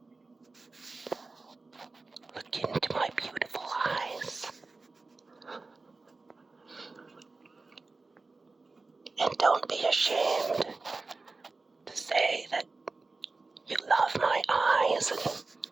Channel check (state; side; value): quieter; left; 3.7 dB